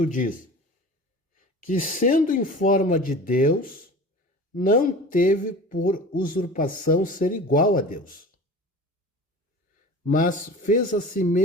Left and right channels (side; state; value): both; normal; correlation 0.38